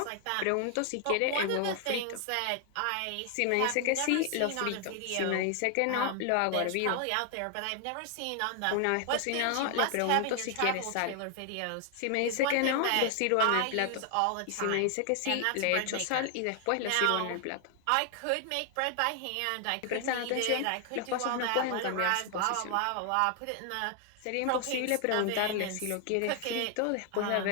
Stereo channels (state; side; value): different; both; correlation 0.00